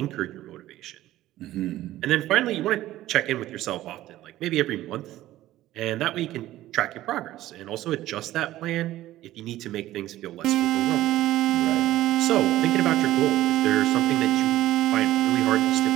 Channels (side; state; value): left; quieter; 15.0 dB